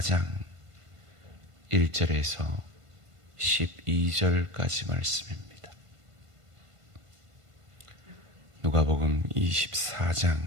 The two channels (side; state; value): left; late; 1.5 ms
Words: 1절에서 12절까지 말씀입니다. 누가복음